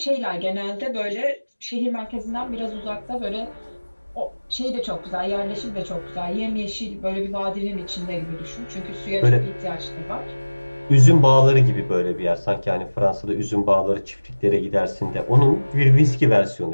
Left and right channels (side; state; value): both; inverted; correlation -1.00